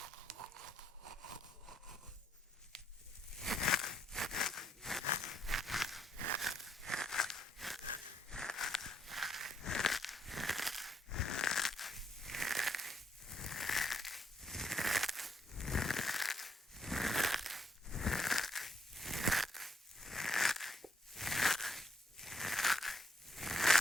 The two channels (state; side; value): normal; both; correlation 0.74